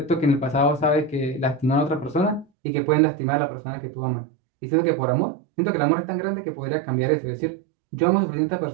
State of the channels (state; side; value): drops out; left; at 2.5 s